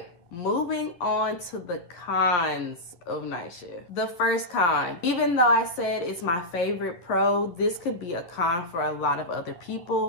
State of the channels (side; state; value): right; late; 11 ms